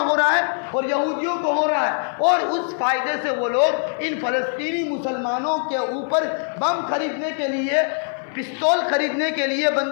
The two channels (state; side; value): silent; right; 58 dB below the other